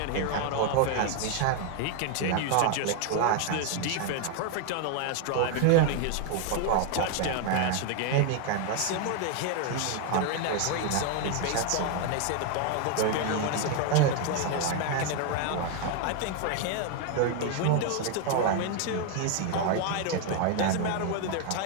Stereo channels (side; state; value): both; different; correlation 0.01